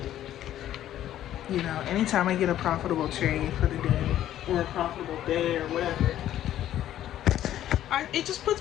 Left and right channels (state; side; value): quieter; right; 12.1 dB